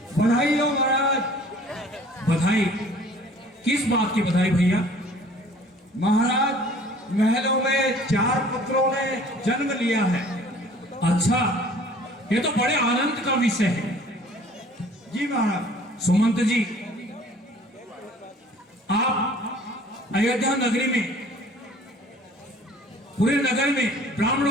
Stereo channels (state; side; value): normal; both; correlation 0.51